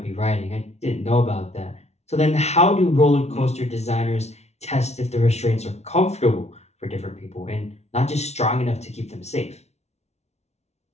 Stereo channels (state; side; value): late; right; 0.31 ms